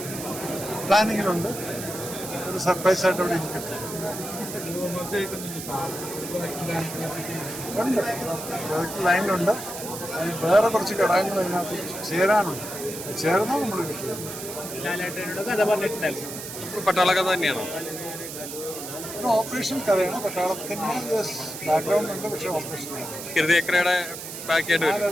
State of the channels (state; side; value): noise; right; hiss, 9 dB below the sound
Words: പ്ലാനിങ്ങിലുണ്ട്. ഒരു സർപ്രൈസ് ആയിട്ട് അവിടെ ഇരിക്കട്ടെ. ഉണ്ട്, ലൈനിലുണ്ട്. വേറെ കുറച്ച് ഘടകങ്ങൾ അതിനകത്ത് ചേരാനുണ്ട്. ചേർന്നാൽ നമ്മൾ കിട്ടുക. പട്ടാള കഥ തന്നെയാണോ? ഒരു ഓപ്പറേഷൻ കഥയാണ്. പട്ടാളത്തിൻ്റെ ബാക്ക്ഗ്രൗണ്ട് ഉണ്ട്, പക്ഷേ ഓപ്പറേഷൻ ഹൃദയക്രയുടെ ബാക്കിയായിട്ട് ആ